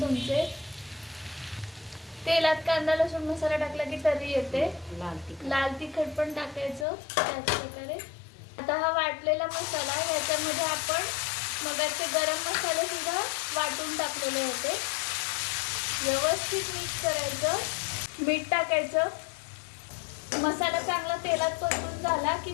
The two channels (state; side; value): drops out; right; at 6.9 s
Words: तेलात कांदा लसूण मसाला टाकला की तरी येते. लाल तिखट पण टाकायचं त्याच प्रकारे. आता हा वाटलेला मसाला, ह्याच्यामध्ये आपण मगाचे गरम मसाले सुद्धा वाटून टाकलेले होते. व्यवस्थित मिक्स करायचं. मीठ टाकायचं. मसाला चांगला तेलात परतून झाला की